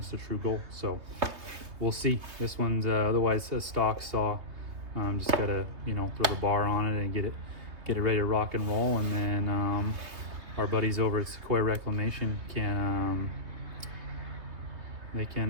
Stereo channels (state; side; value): late; left; 3.3 ms